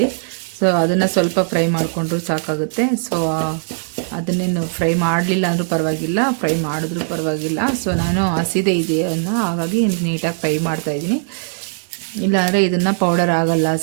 ಸೊ ಅದನ್ನು ಸ್ವಲ್ಪ ಫ್ರೈ ಮಾಡಿಕೊಂಡ್ರೂ ಸಾಕಾಗುತ್ತೆ. ಸೊ ಅದನ್ನೇನು ಫ್ರೈ ಮಾಡಲಿಲ್ಲ ಅಂದರೂ ಪರವಾಗಿಲ್ಲ, ಫ್ರೈ ಮಾಡಿದ್ರೂ ಪರವಾಗಿಲ್ಲ. ಸೊ ನಾನು ಹಸಿದೆ ಇದೆಯನ್ನು ಹಾಗಾಗಿ ನೀಟಾಗಿ ಫ್ರೈ ಮಾಡ್ತಾಯಿದ್ದೀನಿ, ಇಲ್ಲಾಂದರೆ ಇದನ್ನು ಪೌಡರ್ ಆಗಲ್ಲ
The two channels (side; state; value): left; silent; digital silence